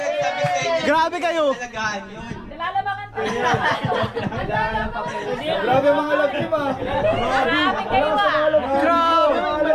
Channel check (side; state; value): both; identical; correlation 1.00